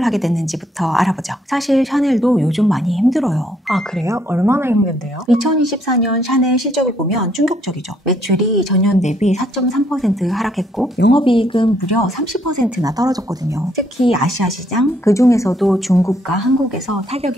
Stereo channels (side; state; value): both; normal; correlation 0.69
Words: 하게 됐는지부터 알아보죠. 사실 샤넬도 요즘 많이 힘들어요. 아, 그래요? 얼마나 힘든데요? 2024년 샤넬 실적을 보면 충격적이죠. 매출이 전년 대비 4.3% 하락했고 영업이익은 무려 30%나 떨어졌거든요. 특히 아시아 시장, 그중에서도 중국과 한국에서